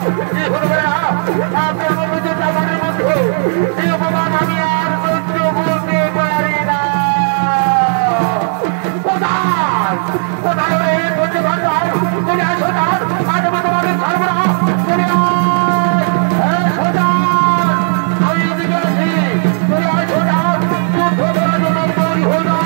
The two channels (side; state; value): left; silent; 57 dB below the other